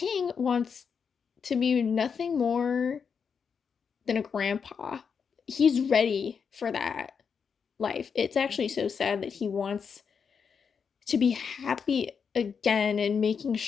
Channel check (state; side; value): quieter; right; 6.3 dB